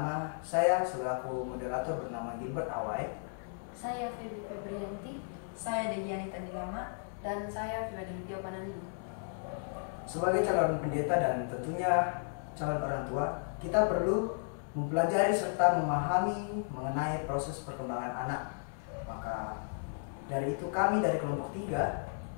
saya selaku moderator bernama Gilbert Awai. Saya Feby Febrianti. Saya Dejiani Tandilama. Dan saya Filadelfia Panandi. Sebagai calon pendeta dan tentunya calon orang tua, kita perlu mempelajari serta memahami mengenai proses perkembangan anak. Maka dari itu kami dari kelompok 3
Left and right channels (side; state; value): right; silent; 55 dB below the other